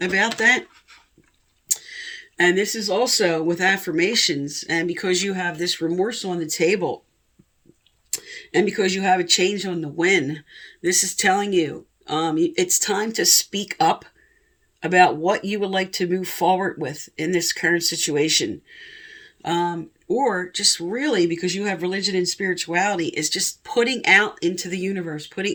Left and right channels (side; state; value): both; identical; correlation 1.00